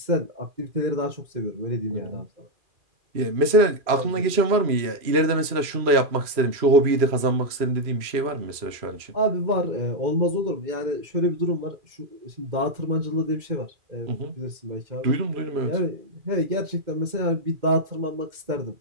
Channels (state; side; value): late; left; 2.4 ms